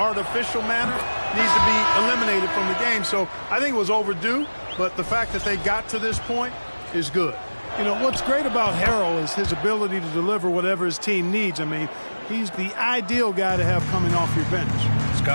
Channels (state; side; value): inverted; both; correlation -1.00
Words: manner needs to be eliminated from the game. So I think it was overdue, but the fact that they got to this point is good. You know, what's great about Harrell is his ability to deliver whatever his team needs. I mean, he's the ideal guy to have coming off your bench.